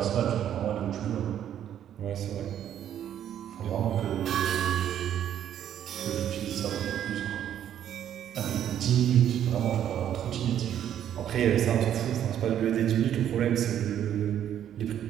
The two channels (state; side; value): quieter; left; 10.3 dB